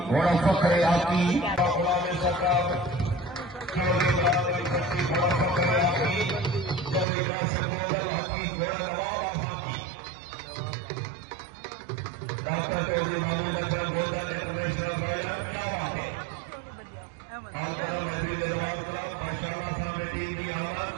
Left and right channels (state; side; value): drops out; left; at 7.1 s